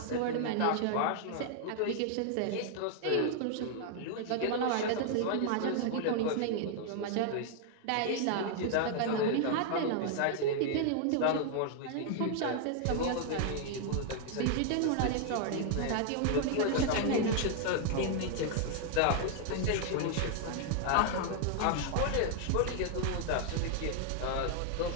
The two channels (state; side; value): different; both; correlation 0.00